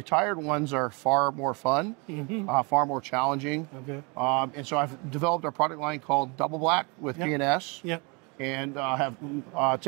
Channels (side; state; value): left; quieter; 30.5 dB